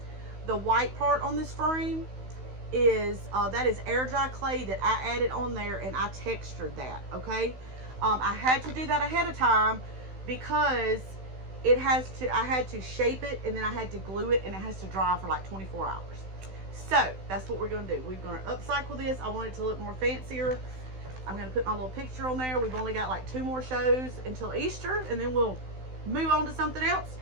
The white part on this frame is that is air dry clay that I added on there, and I textured that. Okay, I had to do that ahead of time because I had to shape it, and then I had to glue it, and it has to dry for like 24 hours. So that's what we're going to do. We're going to upcycle this. I want it to look more fancier. I'm going to put my little picture on there. We've only got like 2 more shows until Easter, and then we'll move on to something else.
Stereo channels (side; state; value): left; late; 16 ms